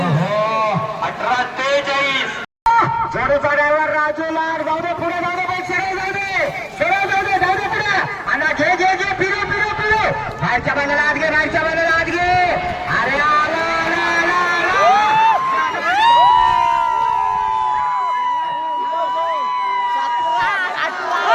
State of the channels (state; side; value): identical; both; correlation 1.00